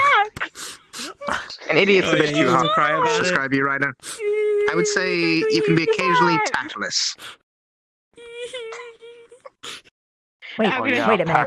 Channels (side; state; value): both; identical; correlation 1.00